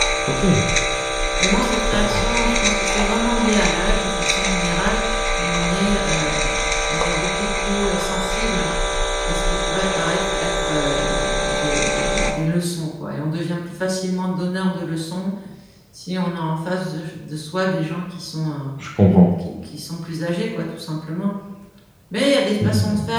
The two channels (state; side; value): identical; both; correlation 1.00